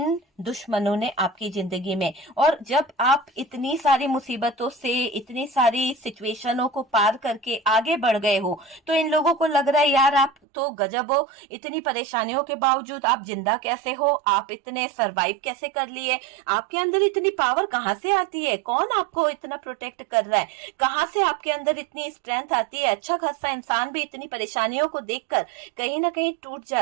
दुश्मनों ने आपकी जिंदगी में। और जब आप इतनी सारी मुसीबतों से, इतनी सारी सिचुएशनों को पार करके आगे बढ़ गए हो, तो इन लोगों को लग रहा है यार आप तो गजब हो, इतनी परेशानियों के बावजूद आप जिंदा कैसे हो, आप इतने सरवाइव कैसे कर लिए, आपके अंदर इतनी पावर कहां से आती है, कौन आपको इतना प्रोटेक्ट कर रहा है, कहां से आपके अंदर इतनी स्ट्रेंथ आती है। अच्छा खासा इंसान भी इतनी परेशानियों को देखकर कहीं ना कहीं टूट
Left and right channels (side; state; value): left; drops out; at 10.3 s